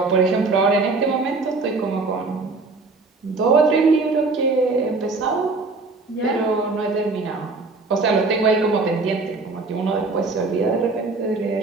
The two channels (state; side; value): quieter; left; 3.7 dB